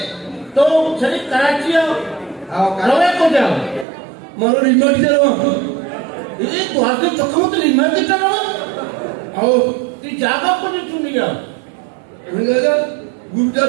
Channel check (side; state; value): left; drops out; at 3.9 s